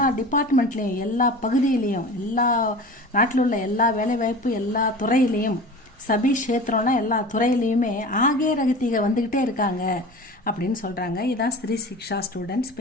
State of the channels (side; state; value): both; normal; correlation 0.36